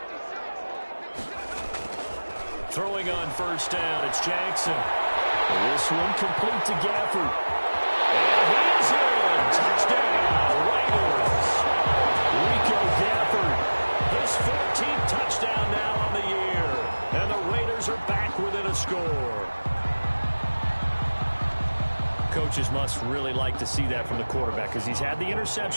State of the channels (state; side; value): inverted; both; correlation -1.00